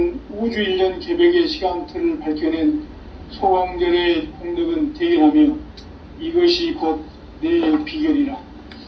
우주 1년 개벽의 시간틀을 밝혀낸 소강절의 공덕은 대견하며 이것이 곧 내 비결이라.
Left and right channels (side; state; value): both; identical; correlation 1.00